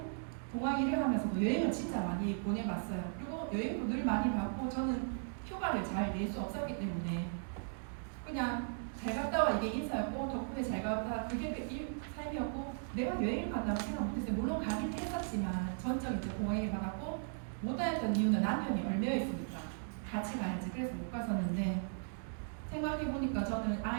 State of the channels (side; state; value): left; silent; digital silence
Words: 공항 일을 하면서도 여행을 진짜 많이 보내봤어요. 그리고 여행도 늘 많이 받고 저는 휴가를 잘 낼 수 없었기 때문에 그냥 잘 갔다 와 이게 인사였고 덕분에 잘 갔다 그게 삶이었고 내가 여행을 간다고 생각 못했어요. 물론 가긴 했었지만 전적 이제 공항 일을 받았고 못 다녔던 이유는 남편이 얼매여 있으니까 같이 가야지. 그래서 못 갔었는데 생각해보니까 저는